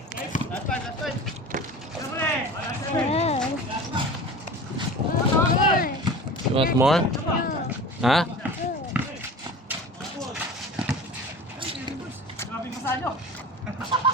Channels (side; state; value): both; normal; correlation 0.36